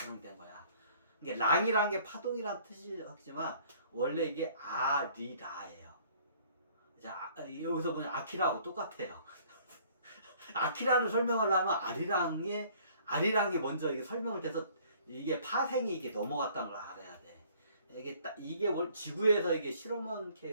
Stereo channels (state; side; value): inverted; both; correlation -0.57